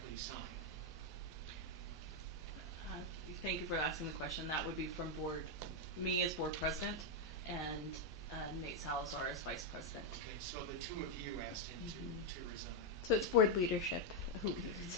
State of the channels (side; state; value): both; normal; correlation 0.02